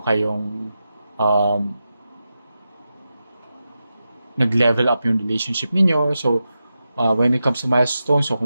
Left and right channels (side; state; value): both; inverted; correlation -0.90